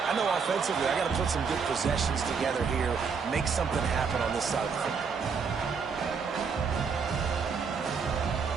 I know offensively I got to put some good possessions together here, make something happen on this side of the football.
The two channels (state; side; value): quieter; left; 5.7 dB